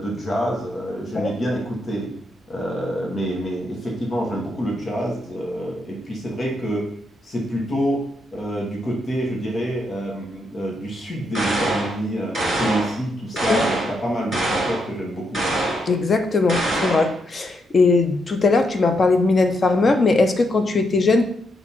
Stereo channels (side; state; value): both; normal; correlation 0.80